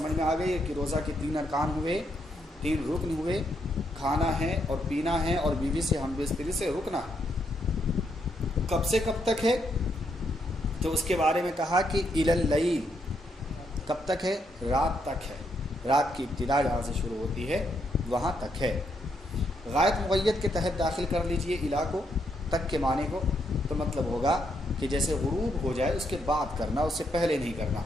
میں آ گئی ہے کہ روزہ کے 3 ارکان ہوئے، 3 رکن ہوئے، کھانا ہے اور پینا ہے اور بیوی سے ہم بستری سے رکنا ہے۔ کب سے کب تک ہے؟ تو اس کے بارے میں کہا کہ الی اللیل، کب تک ہے؟ رات تک ہے، رات کی ابتدا جہاں سے شروع ہوتی ہے وہاں تک ہے۔ غائب مقید کے تحت داخل کر لیجئے الی کو، تک کے معنی کو، تو مطلب ہوگا کہ جیسے غروب ہو جائے اس کے بعد کرنا، اس سے پہلے نہیں کرنا،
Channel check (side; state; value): both; normal; correlation 0.77